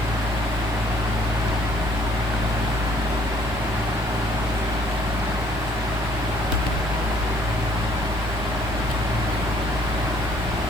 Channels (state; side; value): normal; both; correlation 0.61